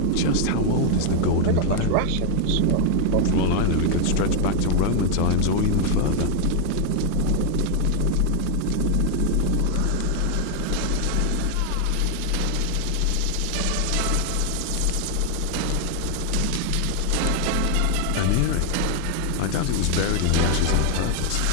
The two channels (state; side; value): different; both; correlation 0.00